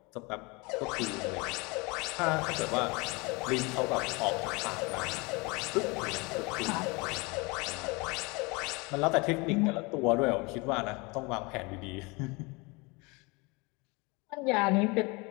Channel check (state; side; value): quieter; right; 27.1 dB